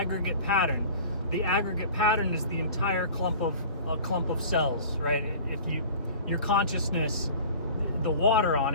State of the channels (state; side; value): inverted; both; correlation -0.42